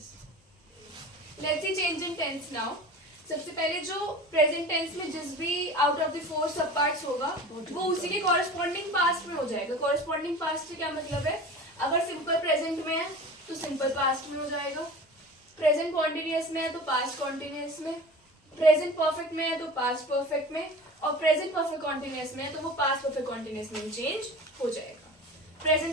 Let's see change in tense now. सबसे पहले जो प्रेजेंट टेंस में जिस भी आउट ऑफ द 4 सब पार्ट्स होगा वो उसी के कॉरेस्पॉन्डिंग पास्ट में हो जाएगा। कॉरेस्पॉन्डिंग पास्ट से क्या मतलब है, अगर सिंपल प्रेजेंट में है तो सिंपल पास्ट में हो जाएगा, प्रेजेंट कॉन्टिन्यूअस में है तो पास्ट कॉन्टिन्यूअस में, प्रेजेंट परफेक्ट में है तो पास्ट परफेक्ट में, और प्रेजेंट परफेक्ट कॉन्टिन्यूअस में है तो वो पास्ट परफेक्ट कॉन्टिन्यूअस में चेंज हो जाएगा।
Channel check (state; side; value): normal; both; correlation 0.37